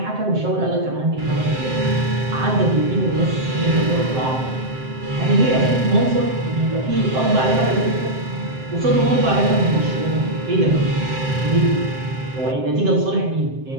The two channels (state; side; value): late; left; 7.7 ms